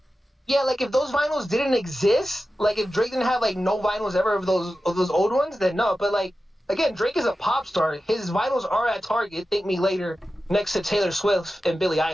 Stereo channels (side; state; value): both; normal; correlation 0.93